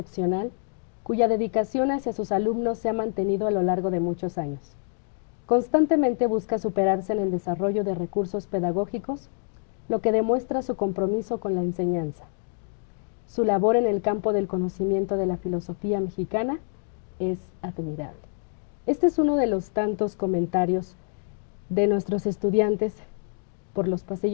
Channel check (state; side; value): silent; right; digital silence